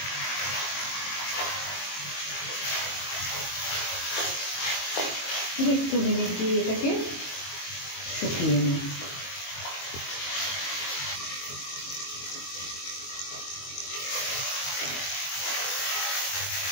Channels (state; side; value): late; right; 22 ms